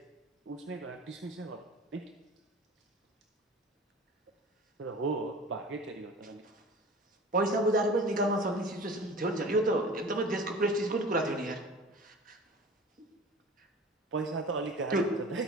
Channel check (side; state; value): both; normal; correlation 0.40